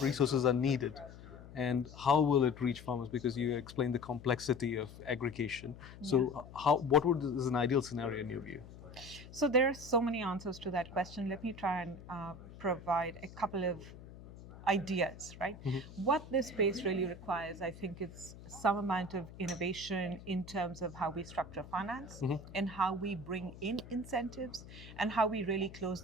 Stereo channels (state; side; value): noise; left; hum, 16 dB below the sound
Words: resources are needed and how will it reach farmers? Because you explained the complexity of aggregation. So is an ideal scenario in your view? So there are so many answers to that question. Let me try and provide a couple of ideas, right? What this space really requires, I think, is some amount of innovation in terms of how we structure finance and how we bring in incentives and how we really close